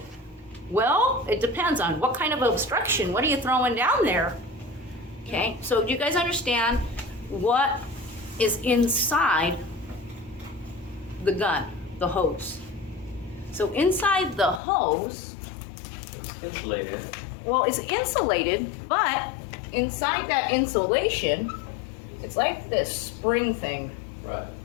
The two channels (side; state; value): right; drops out; at 14.6 s